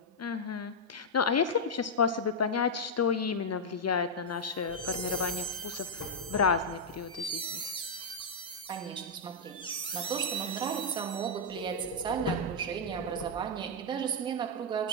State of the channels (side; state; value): both; normal; correlation -0.04